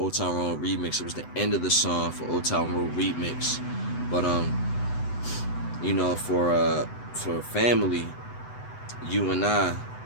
Town Road remix. It was the end of the song for Old Town Road remix. But you know, for Family, You and I,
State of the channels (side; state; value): right; late; 8.0 ms